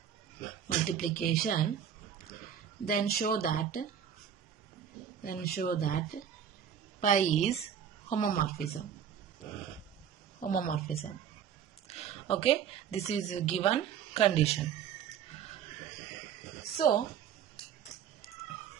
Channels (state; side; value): quieter; left; 8.6 dB